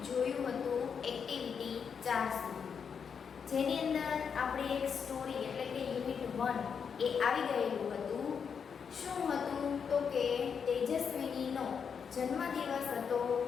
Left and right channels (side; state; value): right; quieter; 6.7 dB